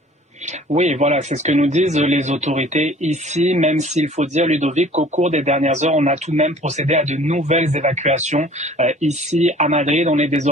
Oui, voilà, c'est ce que nous disent les autorités ici, même s'il faut dire, Ludovic, qu'au cours des dernières heures, on a tout de même procédé à de nouvelles évacuations. Ici, à Madrid, on est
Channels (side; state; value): both; normal; correlation 0.50